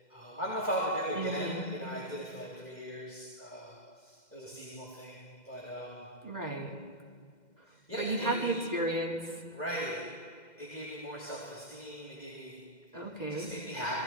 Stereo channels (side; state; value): right; late; 2.1 ms